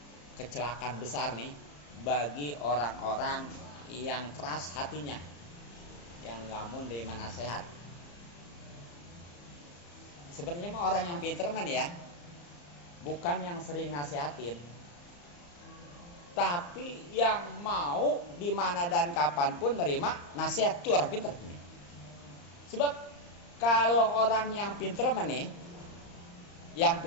kecelakaan besar nih bagi orang-orang yang keras hatinya, yang nggak mau nerima nasihat. Sebenarnya mah orang yang pinter man ya, bukan yang sering nasihatin, tapi yang mau di mana dan kapanpun nerima nasihat, itu orang pinter ini. Sebab kalau orang yang pinter man nih, yang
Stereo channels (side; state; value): right; late; 34 ms